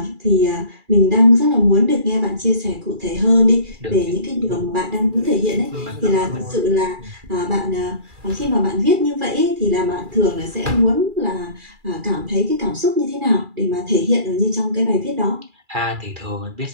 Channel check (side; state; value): left; late; 2.4 ms